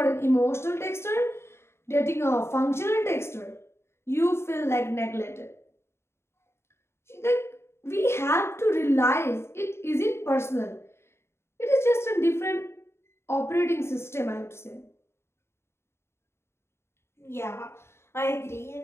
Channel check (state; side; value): late; right; 0.12 ms